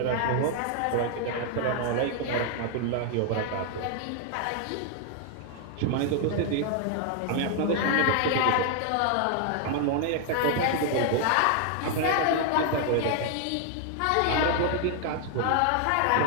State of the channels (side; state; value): both; different; correlation 0.00